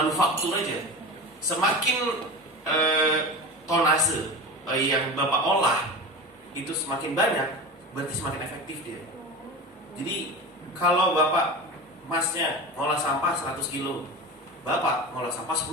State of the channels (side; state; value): both; normal; correlation 0.29